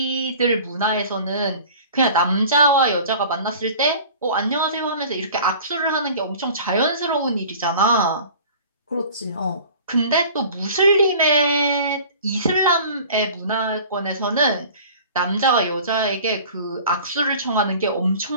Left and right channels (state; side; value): inverted; both; correlation -0.44